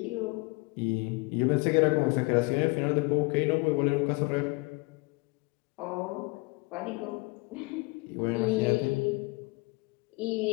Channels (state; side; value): quieter; right; 27.1 dB